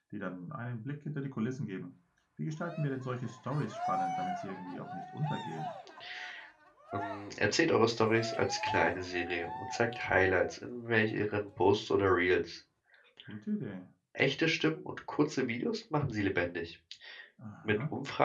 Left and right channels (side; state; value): both; identical; correlation 1.00